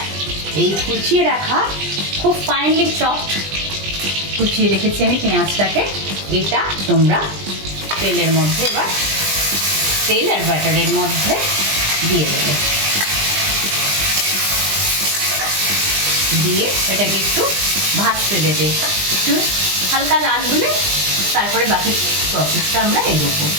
এই কুচিয়ে রাখা, খুব ফাইনলি চপড কুচিয়ে রেখেছি আমি পেঁয়াজটাকে, এটা তোমরা তেলের মধ্যে, এবার তেল আর বাটারের মধ্যে দিয়ে দেবে। দিয়ে এটাকে একটু ভাজতে দেবে, একটু হালকা লাল হলে তারপরে বাকি প্রসেসটা আমরা এগোবো।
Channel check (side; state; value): left; late; 20 ms